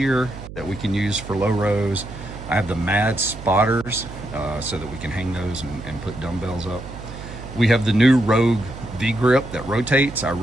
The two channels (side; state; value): right; noise; hum, 12 dB below the sound